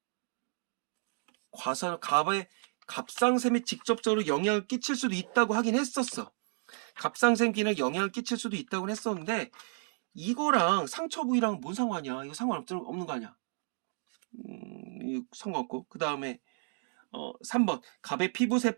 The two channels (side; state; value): left; silent; 56 dB below the other